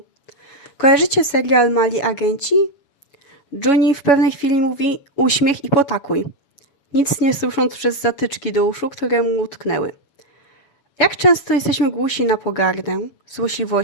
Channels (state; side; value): late; right; 7.1 ms